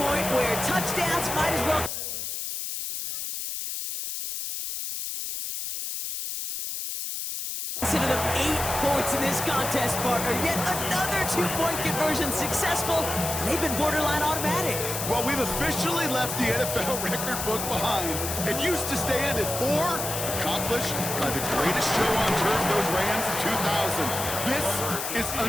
where touchdowns might as well consider them 8 points in this contest, partner. Yet another 2-point conversion successful, and they've been borderline automatic. Well, we've officially left the NFL record book behind. It used to stand at 4, accomplished by the greatest show on turf, those Rams in 2000. This is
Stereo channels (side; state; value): left; noise; hiss, 4 dB below the sound